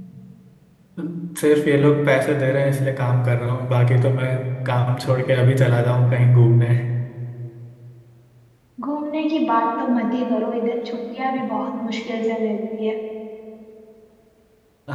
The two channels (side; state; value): both; identical; correlation 1.00